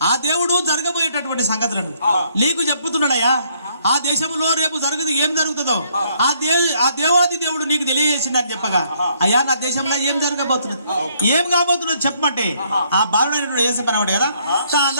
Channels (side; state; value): both; inverted; correlation -0.68